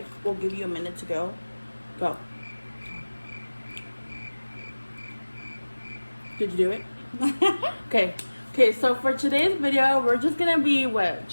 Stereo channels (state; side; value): inverted; both; correlation -1.00